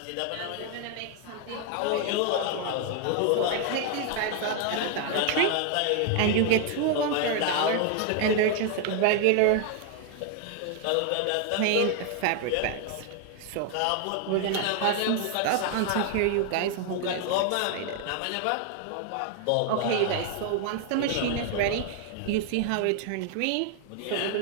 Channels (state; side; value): different; both; correlation 0.00